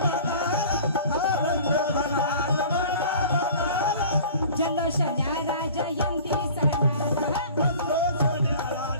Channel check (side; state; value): both; inverted; correlation -0.44